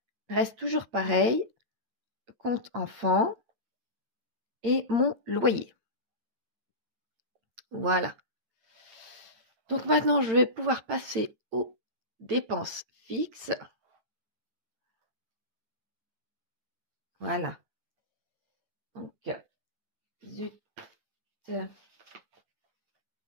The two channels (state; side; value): late; left; 8.7 ms